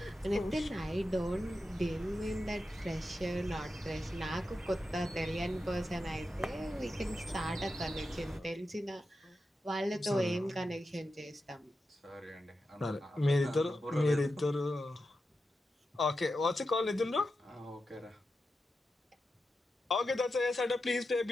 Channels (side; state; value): both; normal; correlation 0.90